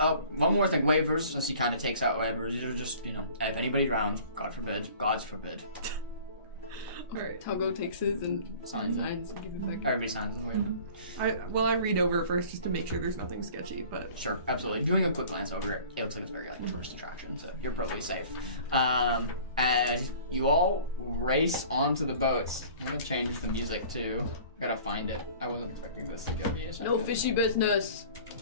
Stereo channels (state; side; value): inverted; both; correlation -0.47